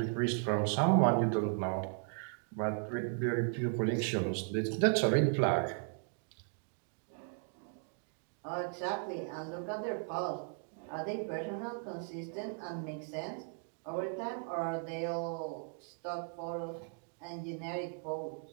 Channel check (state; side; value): silent; left; 53 dB below the other